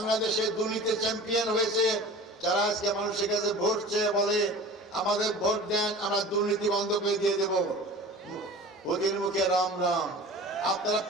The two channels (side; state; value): both; normal; correlation 0.39